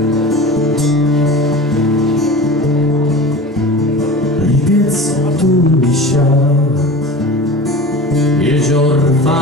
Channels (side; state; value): both; normal; correlation 0.35